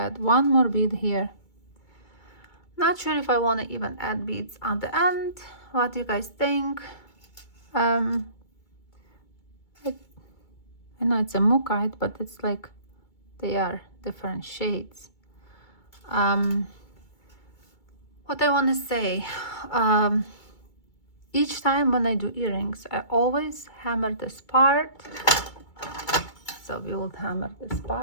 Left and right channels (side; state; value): right; late; 2.3 ms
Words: 1 more bead here. Not sure if I want to even add beads on the end. What do you guys think? I know it's a mookite, but it's like they are different shades. What I want to say, each time when I do earrings, I always hammer this part. So we will hammer this